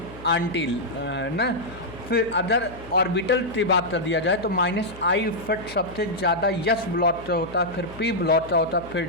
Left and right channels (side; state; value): left; noise; hum, 18 dB below the sound